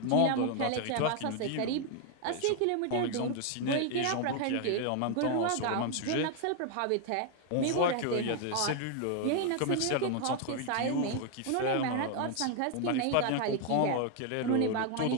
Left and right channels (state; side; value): different; both; correlation 0.01